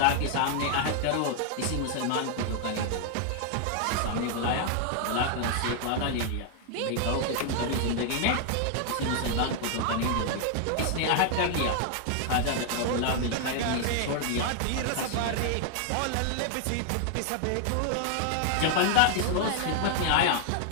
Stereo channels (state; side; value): different; both; correlation 0.00